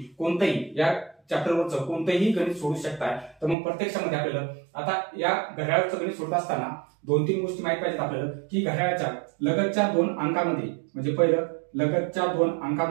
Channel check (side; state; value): left; drops out; at 3.6 s